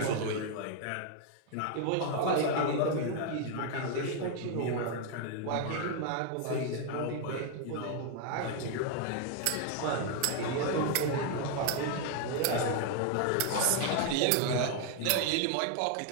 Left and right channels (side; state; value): both; different; correlation 0.00